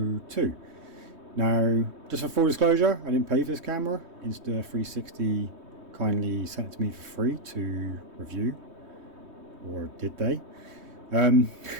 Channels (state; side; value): late; left; 3.2 ms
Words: Now, just for full disclosure, I didn't pay for this camera. Insta360 kindly sent it to me for free to review, or did they?